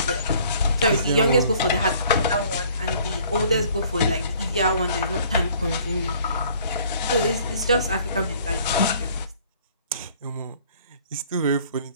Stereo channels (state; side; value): inverted; both; correlation -0.57